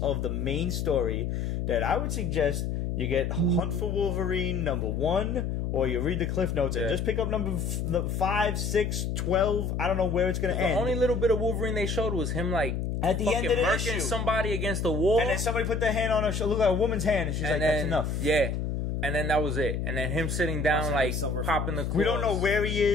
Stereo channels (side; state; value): left; noise; hum, 1 dB below the sound